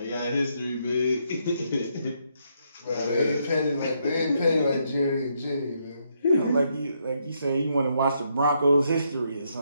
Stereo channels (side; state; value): both; inverted; correlation -0.76